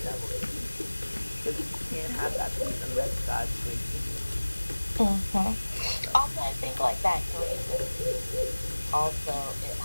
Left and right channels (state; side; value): inverted; both; correlation -1.00